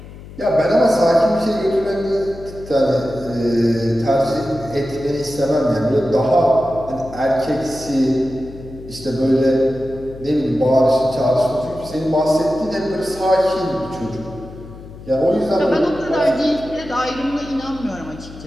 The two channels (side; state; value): left; noise; hum, 16 dB below the sound